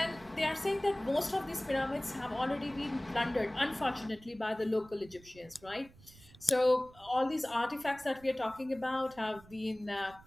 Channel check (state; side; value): noise; right; rumble, 23 dB below the sound